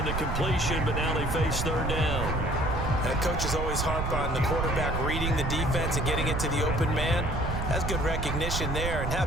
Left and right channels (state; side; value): noise; right; rumble, 2 dB below the sound